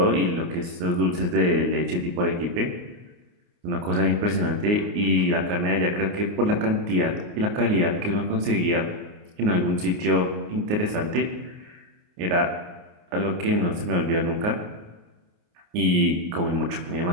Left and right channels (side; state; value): left; late; 29 ms